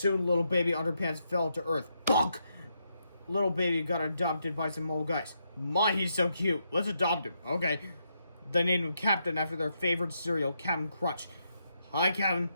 little baby Underpants fell to Earth. Bonk! Little baby got adopted by some old guys. My, he's so cute. Let's adopt him. Okay. They named him Captain after their favorite cereal, Captain Crunch. Hi, Captain.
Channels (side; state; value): both; inverted; correlation -0.80